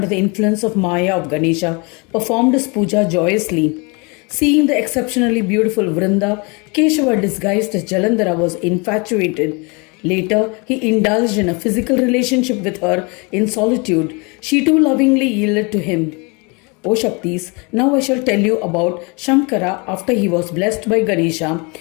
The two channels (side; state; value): right; quieter; 30.1 dB